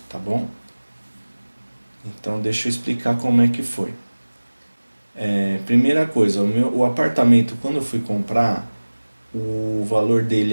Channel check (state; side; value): inverted; both; correlation -1.00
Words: tá bom? Então deixa eu explicar como é que foi. Primeira coisa, o apartamento quando eu fui comprar, o valor